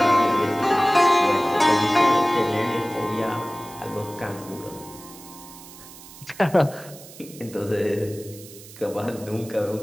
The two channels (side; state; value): right; noise; hiss, 18 dB below the sound